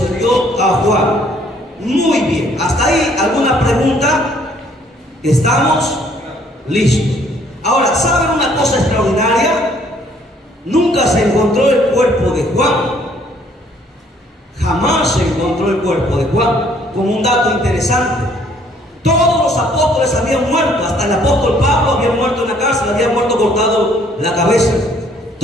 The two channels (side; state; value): both; normal; correlation 0.62